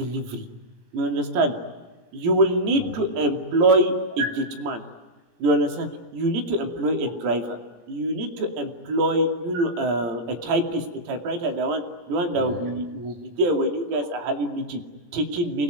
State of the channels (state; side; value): late; left; 17 ms